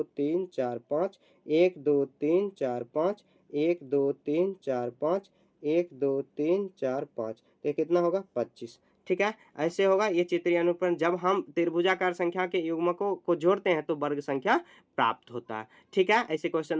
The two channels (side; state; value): both; identical; correlation 1.00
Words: 3 4 5 1 2 3 4 5 1 2 3 4 5 1 2 3 4 5, तो ये कितना होगा 25, ठीक है। ऐसे होगा ये चित्रीय अनुरूपण। जब हम त्रिभुजाकार संख्या के युग्मकों को जोड़ते हैं तो वर्ग संख्या प्राप्त होता है, ठीक है। ऐसे क्वेश्चन